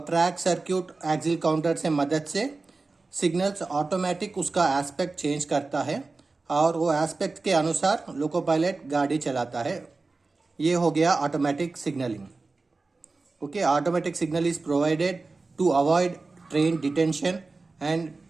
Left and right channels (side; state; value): left; quieter; 3.7 dB